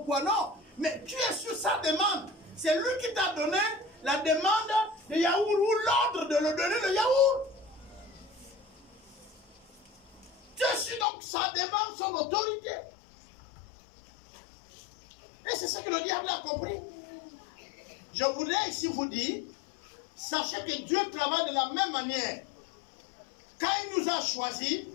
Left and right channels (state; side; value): drops out; right; at 11.1 s